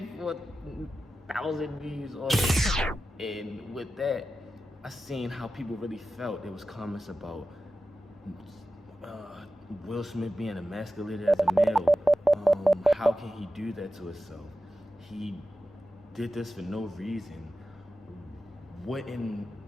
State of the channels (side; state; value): both; normal; correlation 0.93